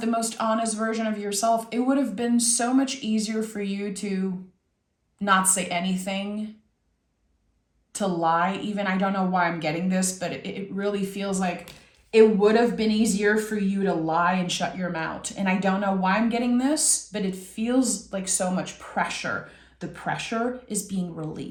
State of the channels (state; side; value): identical; both; correlation 1.00